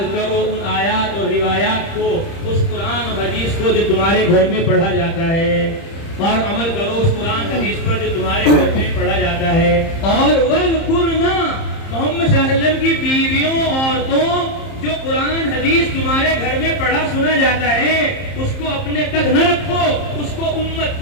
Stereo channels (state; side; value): late; right; 30 ms